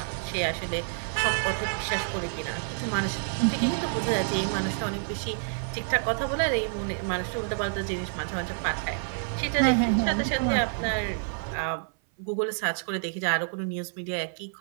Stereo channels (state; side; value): silent; left; 56 dB below the other